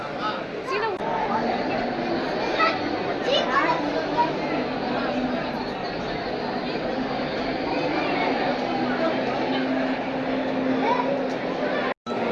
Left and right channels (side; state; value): both; identical; correlation 1.00